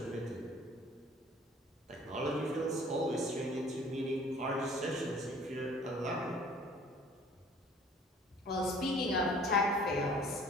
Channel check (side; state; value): both; normal; correlation 0.52